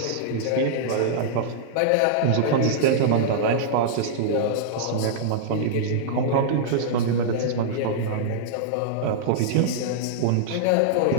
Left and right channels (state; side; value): different; both; correlation -0.02